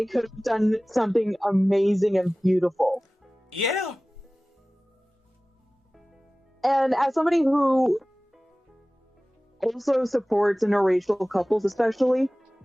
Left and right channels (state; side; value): normal; both; correlation 0.98